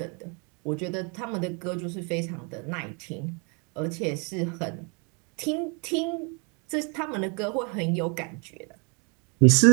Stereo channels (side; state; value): left; quieter; 33.9 dB